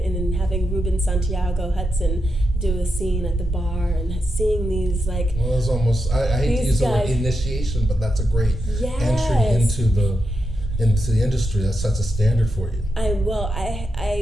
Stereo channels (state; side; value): normal; both; correlation 0.86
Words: and having Ruben Santiago Hudson do a scene at the bar and seeing these like. Well, it's almost, I hate to use the word initiation, but that's a great entry into the industry. That sets a standard for you. I